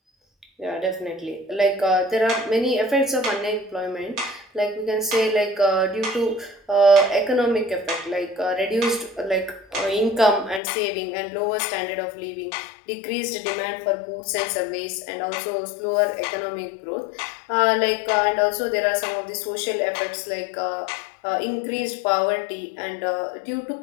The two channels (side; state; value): right; drops out; at 10.6 s